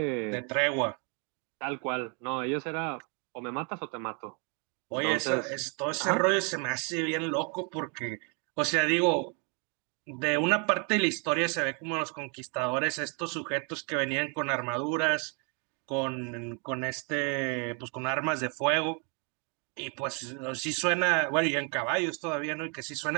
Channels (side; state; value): left; quieter; 36.2 dB